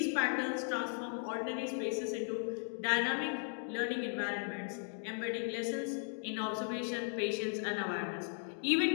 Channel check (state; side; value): silent; right; 53 dB below the other